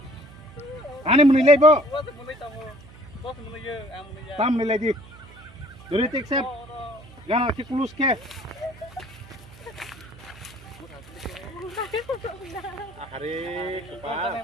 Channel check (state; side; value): noise; right; hum, 20 dB below the sound